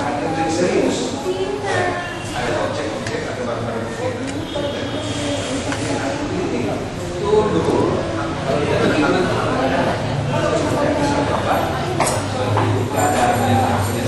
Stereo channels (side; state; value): both; identical; correlation 1.00